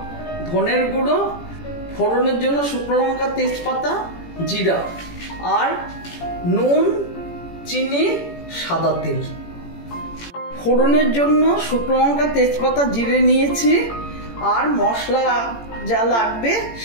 ধনের গুঁড়ো, ফোড়নের জন্য শুকনো লঙ্কা, তেজপাতা, জিরা আর নুন, চিনি, সাদা তেল। ফোড়নের জন্য শুকনো লঙ্কা, তেজপাতা, জিরে নিয়েছি আর মশলা যা লাগবে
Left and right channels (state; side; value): late; right; 18 ms